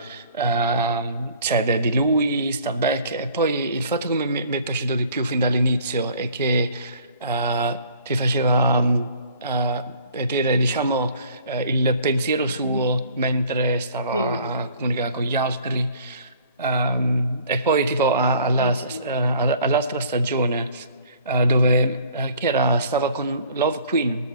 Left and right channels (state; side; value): inverted; both; correlation -0.53